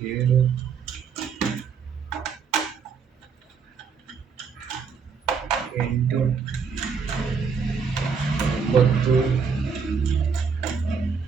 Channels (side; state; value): left; quieter; 5.8 dB